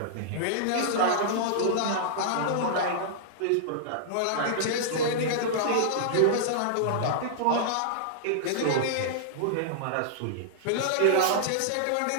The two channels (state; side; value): different; both; correlation -0.01